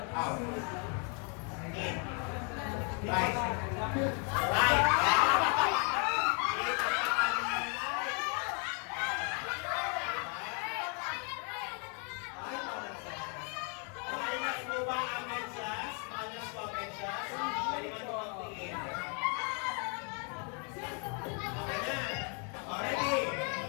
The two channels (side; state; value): right; quieter; 38.1 dB